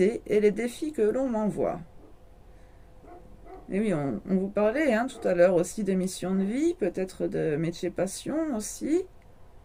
et les défis que l'on m'envoie. Et oui, on vous parlait hein, tout à l'heure aussi de mission de vie, peut-être de métier passion aussi.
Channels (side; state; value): both; identical; correlation 1.00